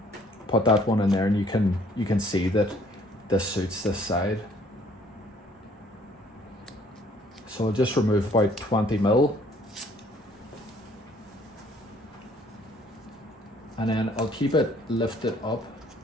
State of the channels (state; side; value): normal; both; correlation 0.60